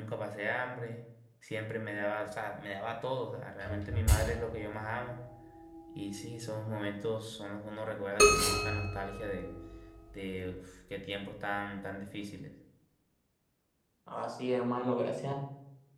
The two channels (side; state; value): both; identical; correlation 1.00